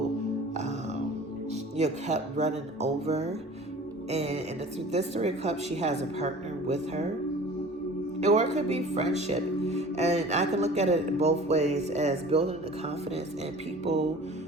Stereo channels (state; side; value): normal; both; correlation 0.43